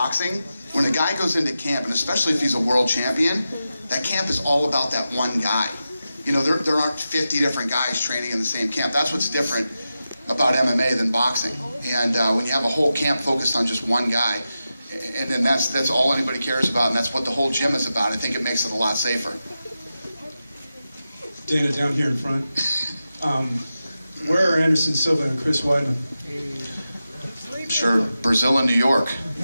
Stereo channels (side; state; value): both; inverted; correlation -0.91